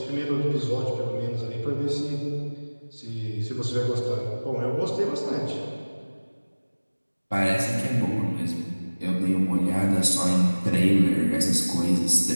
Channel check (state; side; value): inverted; both; correlation -1.00